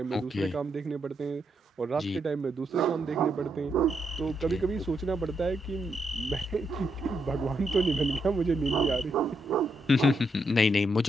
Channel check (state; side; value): normal; both; correlation 0.80